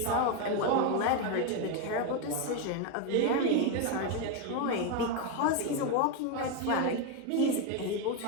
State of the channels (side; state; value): both; different; correlation 0.02